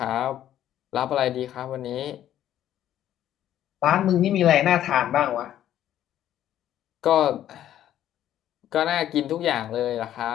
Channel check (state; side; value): quieter; right; 11.7 dB